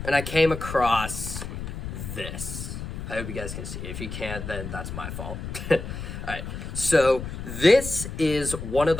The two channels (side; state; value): left; noise; rumble, 7 dB below the sound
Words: and I came across this. I hope you guys can see. If you can't, then that's my fault. Alright, so this is one of